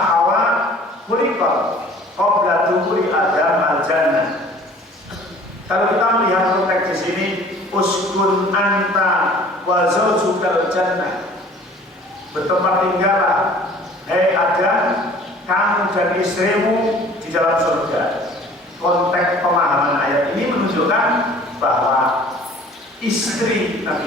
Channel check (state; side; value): normal; both; correlation 0.49